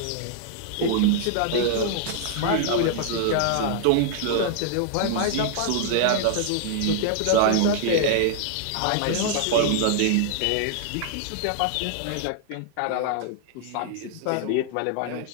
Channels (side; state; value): both; different; correlation -0.01